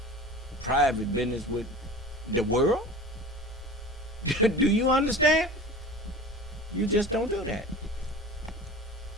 private business with the world. Do you understand? You just don't do that.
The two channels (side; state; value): both; normal; correlation 0.36